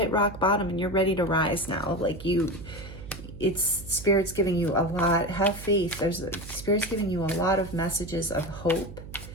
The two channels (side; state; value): right; noise; hum, 14 dB below the sound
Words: rock bottom and you're ready to rise now. Like it's Spirit's giving you a lot. Have faith. Spirit's giving you a lot of messages of hope